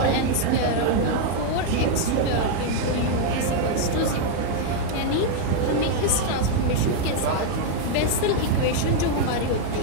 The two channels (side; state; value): both; different; correlation 0.00